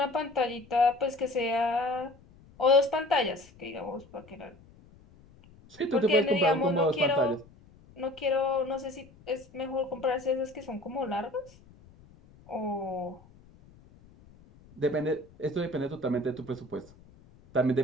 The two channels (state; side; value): noise; left; rumble, 25 dB below the sound